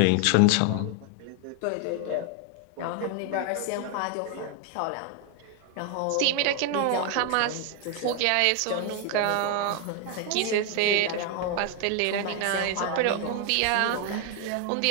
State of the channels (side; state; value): both; different; correlation 0.00